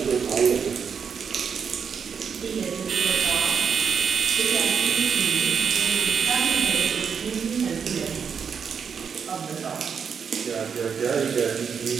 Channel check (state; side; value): quieter; left; 6.7 dB